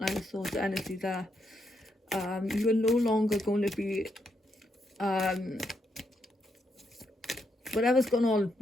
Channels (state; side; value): normal; both; correlation 0.79